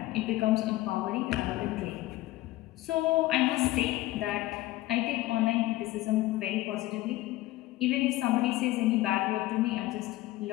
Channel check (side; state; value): right; quieter; 17.1 dB